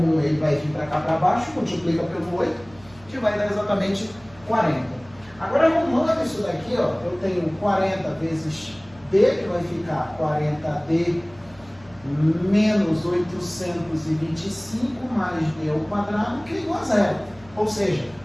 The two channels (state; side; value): noise; right; hum, 25 dB below the sound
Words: ele vai vir para cá para baixo, multiplica pelo 8, que vai dar exatamente 40. Agora, arrumando isso daqui, ó, eu tenho 40 vezes D, que vai ficar 40D menos 825 mais D ao quadrado, que é igual a zero. Ou seja,